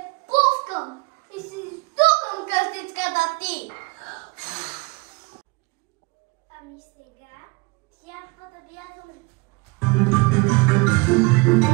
пускам и си издухам къщичката ти. Ами сега трябва да бягаме.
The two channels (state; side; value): quieter; left; 26.8 dB